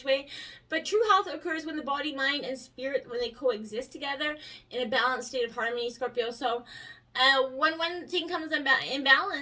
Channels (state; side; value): identical; both; correlation 1.00